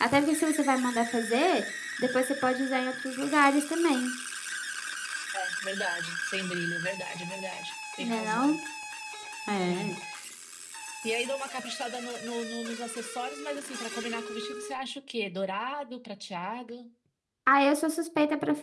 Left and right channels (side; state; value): both; identical; correlation 1.00